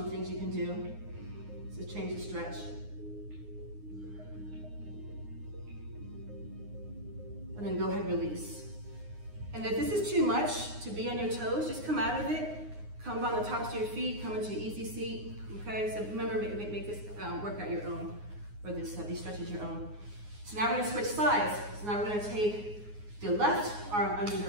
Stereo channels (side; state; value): left; late; 9.6 ms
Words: things you can do to change the stretch. And then go ahead and release. And if this is too much to be on your toes, just come out of it. Come on the tops of your feet, come into easy seat. Okay, so remember, make this workout your own, or these stretches your own. So now we're gonna switch sides. So now we're gonna take the left arm under